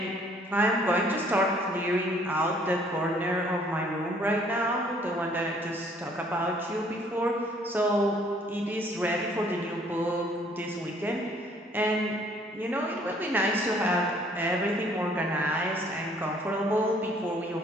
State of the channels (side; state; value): both; normal; correlation 0.60